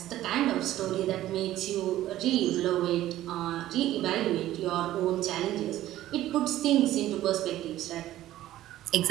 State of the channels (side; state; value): left; quieter; 14.1 dB